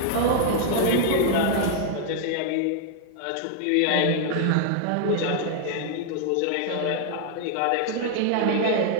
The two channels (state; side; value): different; both; correlation 0.00